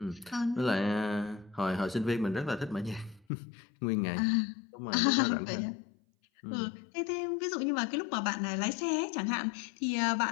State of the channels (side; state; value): right; drops out; at 3.2 s